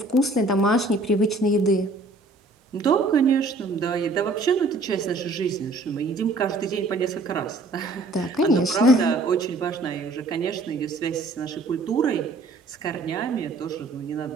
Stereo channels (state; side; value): quieter; left; 3.1 dB